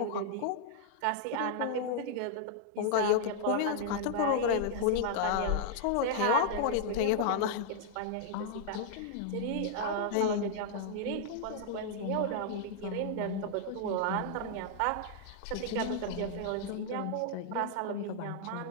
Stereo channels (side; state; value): both; different; correlation -0.01